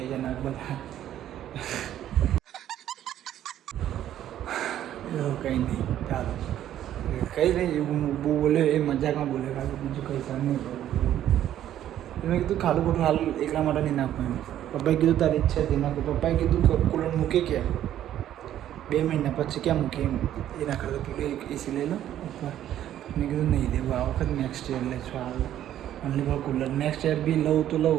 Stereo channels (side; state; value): left; quieter; 11.7 dB